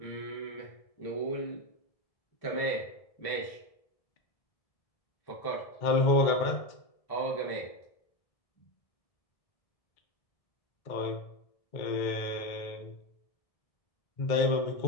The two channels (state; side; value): late; right; 1.7 ms